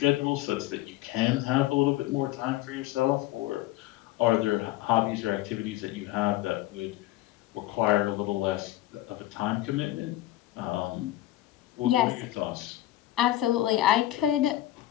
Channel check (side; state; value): right; quieter; 15.4 dB